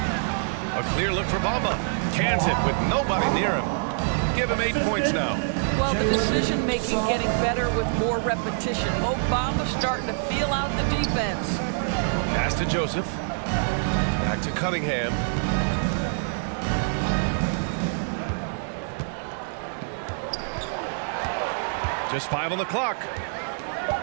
A clear look for Bamba. Cans it with nobody near him. Give him 8 points now. Well, the decision-making getting better with more repetition. Mo Bamba starting to feel out the defense. Pass to Joseph. Back to Cunningham. Just 5 on the clock.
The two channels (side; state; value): left; silent; digital silence